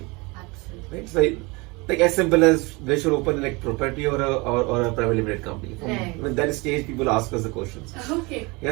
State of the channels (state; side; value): quieter; left; 26.1 dB